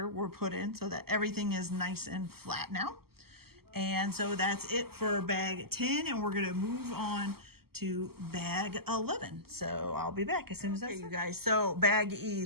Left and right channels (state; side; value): late; left; 0.95 ms